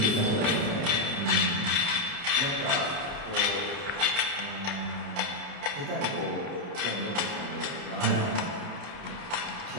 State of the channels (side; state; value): left; late; 30 ms